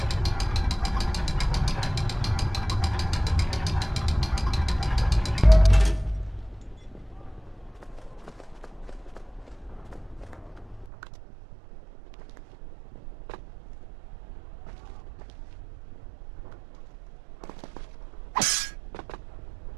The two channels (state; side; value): drops out; left; at 10.9 s